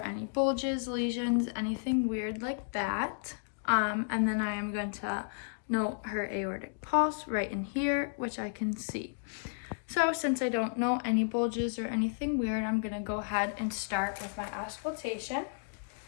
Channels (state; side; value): silent; right; digital silence